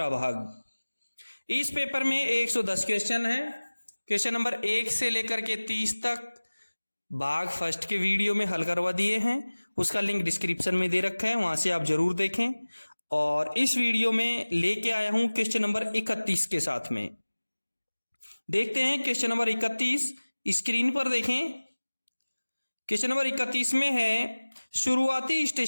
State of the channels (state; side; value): inverted; both; correlation -1.00